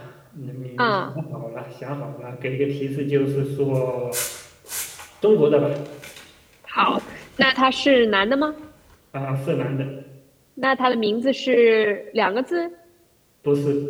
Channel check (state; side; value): identical; both; correlation 1.00